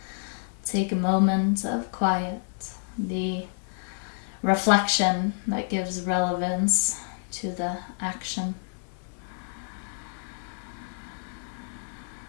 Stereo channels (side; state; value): right; silent; digital silence